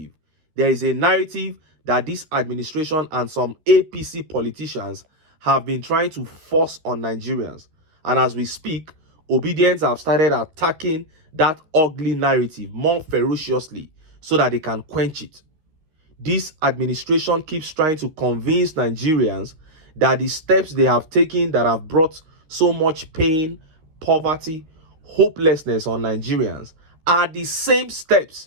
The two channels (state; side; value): late; left; 13 ms